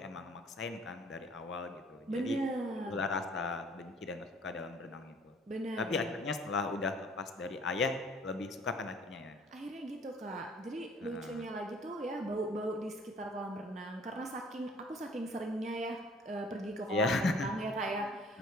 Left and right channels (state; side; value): normal; both; correlation 0.55